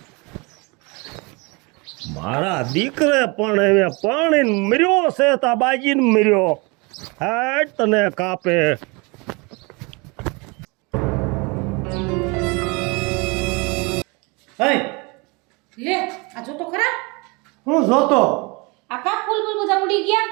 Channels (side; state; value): left; quieter; 28.3 dB